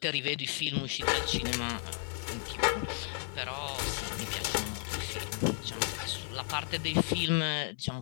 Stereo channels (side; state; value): right; silent; digital silence